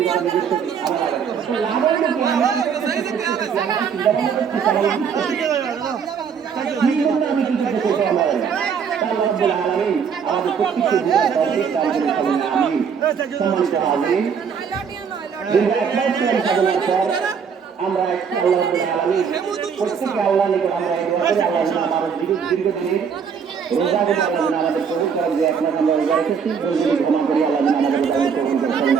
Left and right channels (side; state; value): left; quieter; 6.8 dB